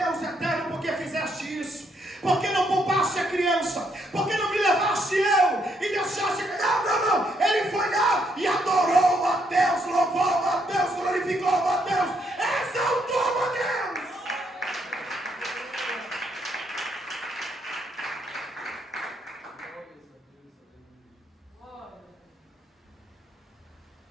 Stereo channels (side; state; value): both; normal; correlation 0.74